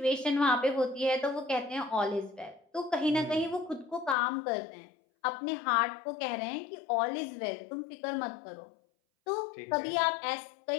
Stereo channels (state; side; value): drops out; right; at 4.2 s